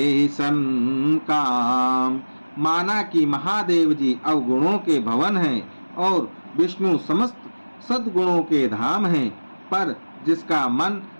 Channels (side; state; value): both; inverted; correlation -1.00